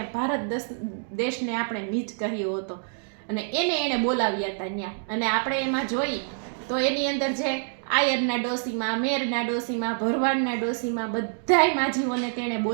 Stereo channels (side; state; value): left; silent; digital silence